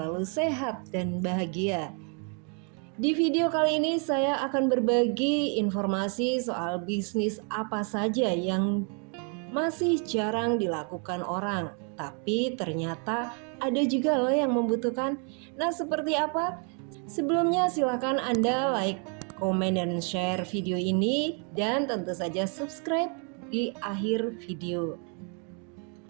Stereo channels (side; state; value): left; quieter; 39.5 dB